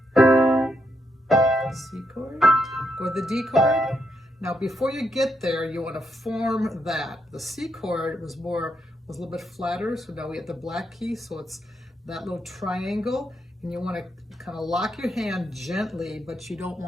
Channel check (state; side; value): normal; both; correlation 0.79